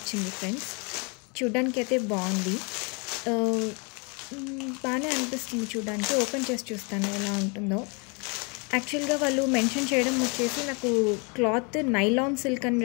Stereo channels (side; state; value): right; quieter; 32.7 dB